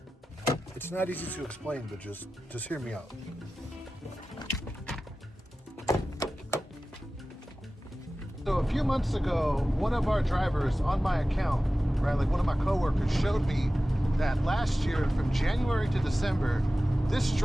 It's not easy to explain, but just hear me out. So a few months ago, one of our drivers on my account, right, like one of my coworkers showed me that last year from January to December, this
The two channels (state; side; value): normal; both; correlation 0.95